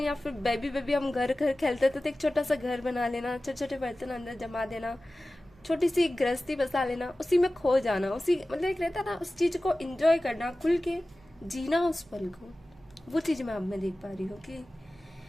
फिर बेबी बेबी हम घर घर खेलते थे तो एक छोटा सा घर बना लेना, छोटे छोटे बर्तन अंदर जमा देना, छोटी सी गृहस्थी बसा लेना, उसी में खो जाना, उसी मतलब एक रहता ना उस चीज को एंजॉय करना, खुल के जीना उस पल को, वो चीज मैं आप में देख पा रही हूँ।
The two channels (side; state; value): right; noise; hum, 28 dB below the sound